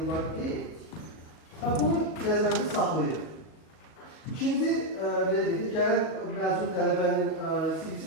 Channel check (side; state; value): right; late; 38 ms